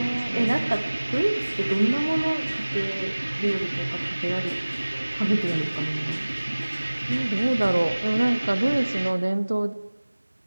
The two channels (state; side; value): inverted; both; correlation -1.00